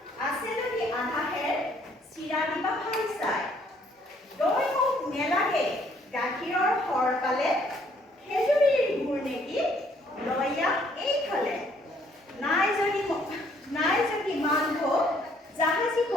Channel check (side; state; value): both; normal; correlation 0.64